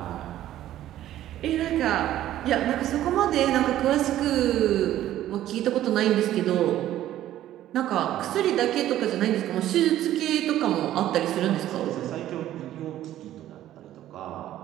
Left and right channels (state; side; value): quieter; left; 13.0 dB